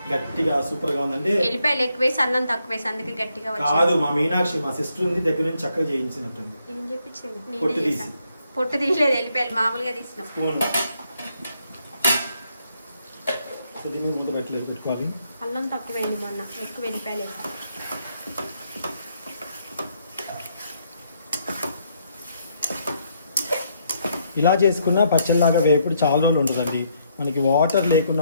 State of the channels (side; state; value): both; inverted; correlation -0.74